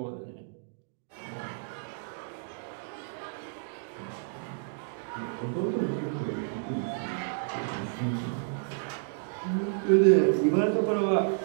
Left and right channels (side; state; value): left; silent; digital silence